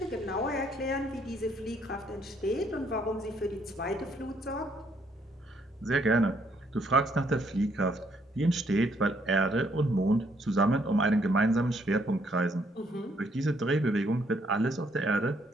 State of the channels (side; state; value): both; normal; correlation 0.69